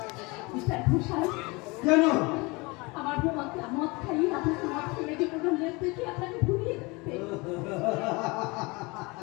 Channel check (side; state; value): right; quieter; 25.8 dB